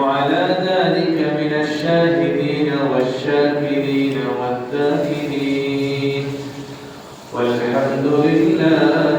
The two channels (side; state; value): both; identical; correlation 1.00